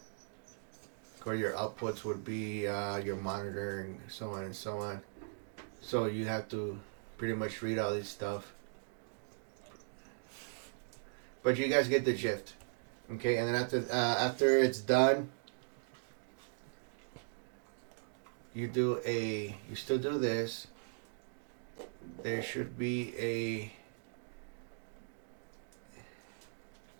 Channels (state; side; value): silent; left; digital silence